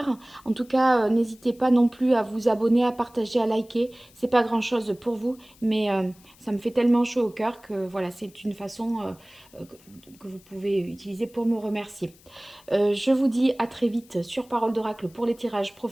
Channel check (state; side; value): noise; left; hiss, 27 dB below the sound